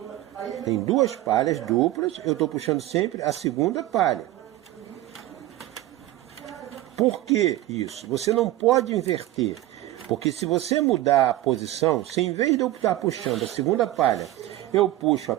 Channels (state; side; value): quieter; left; 15.4 dB